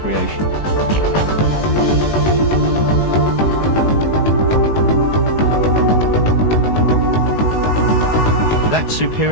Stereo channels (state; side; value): late; right; 19 ms